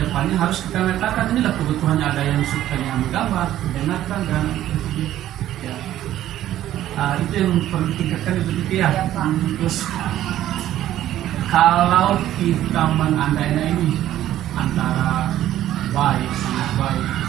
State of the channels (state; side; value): quieter; left; 12.9 dB